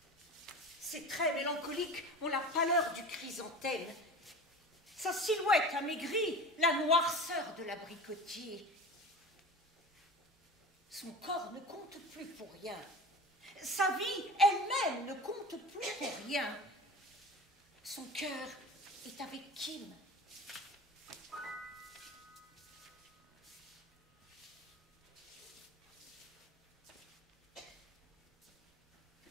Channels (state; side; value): normal; both; correlation 0.34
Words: Ses traits mélancoliques ont la pâleur du chrysanthème. Sa silhouette amaigrie, la noirceur de l'abricotier. Son corps ne compte plus pour rien. Sa vie elle-même ne compte plus pour rien. Son cœur est avec Kim.